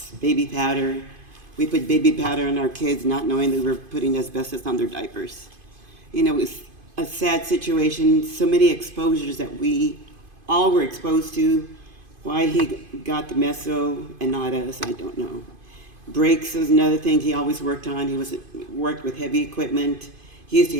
baby powder. We put baby powder on our kids not knowing that we were putting asbestos on their diapers. It was a sad situation, so many exposures that we all were exposed to. Why he got the meso and not us, I don't know. Brakes was another thing he always worked on. He worked with heavy equipment. He used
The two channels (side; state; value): left; late; 2.5 ms